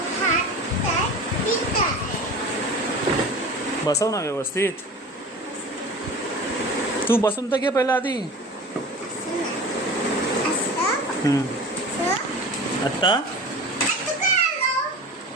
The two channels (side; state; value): both; normal; correlation 0.36